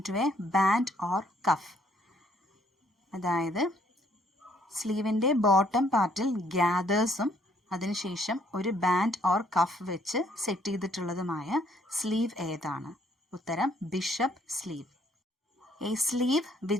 into a band or cuff. അതായത് സ്ലീവിൻ്റെ ബോട്ടം പാർട്ടിൽ ഗ്യാദേഴ്സും അതിനുശേഷം ഒരു ബാൻഡ് ഓർ കഫ് വെച്ച് സെറ്റ് ചെയ്തിട്ടുള്ളതുമായ സ്ലീവ് ഏതാണ്? ഉത്തരം bishop sleeve. A sleeve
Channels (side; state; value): both; normal; correlation 0.66